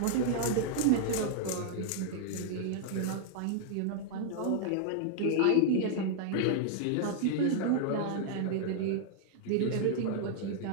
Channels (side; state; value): both; different; correlation -0.01